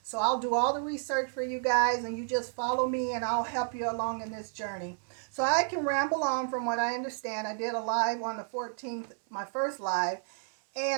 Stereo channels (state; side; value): silent; left; digital silence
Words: So I'll do all the research for you guys, and you just follow me and I'll help you along in this journey. So I can ramble on from what I understand. I did a live on the 14th, my first live,